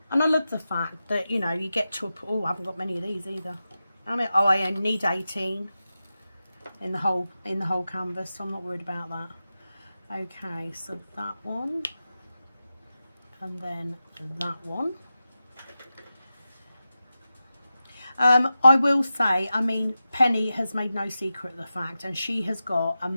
And I love the fact that, you know, you get to a... Oh, I haven't got many of these either. I mean, oh, I only need 18 in the whole canvas, so I'm not worried about that. Okay, so that one. And then that one. I will say, I mean, Penny has made no secret of the fact, and she has got a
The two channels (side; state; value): both; inverted; correlation -0.93